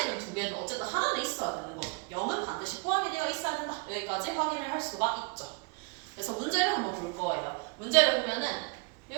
두 개든 어쨌든 하나는 있어야 되는 거죠. 0은 반드시 포함이 되어 있어야 된다. 여기까지 확인을 할 수가 있죠. 그래서 문제를 한번 볼 거예요. 문제를 보면은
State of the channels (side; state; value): left; quieter; 30.8 dB